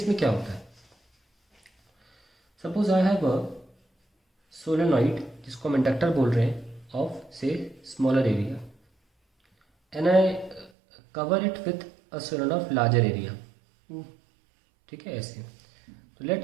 क्या होता है. Suppose I have a solenoid जिसको हम इंडक्टर बोल रहे हैं ऑफ से smaller area and I cover it with a solenoid of larger area. ठीक है ऐसे. तो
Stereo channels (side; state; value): left; drops out; at 10.7 s